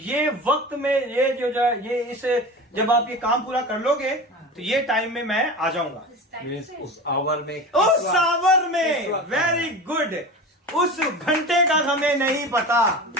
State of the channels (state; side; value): normal; both; correlation 0.31